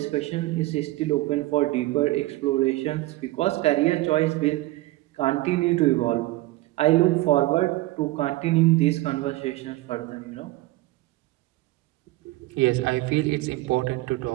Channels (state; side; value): quieter; left; 18.6 dB